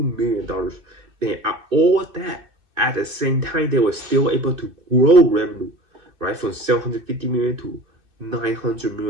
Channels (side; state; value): left; late; 2.5 ms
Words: million dollars. And all that at the same time, they were still able to grow revenue, right, from 750 million to 900